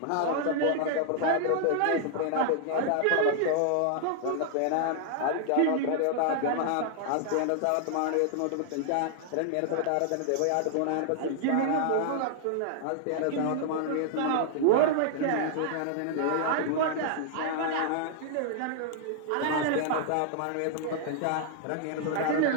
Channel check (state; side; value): different; both; correlation -0.01